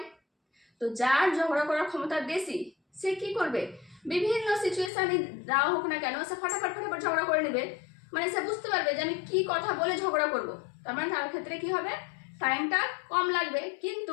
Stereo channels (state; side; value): drops out; right; at 4.9 s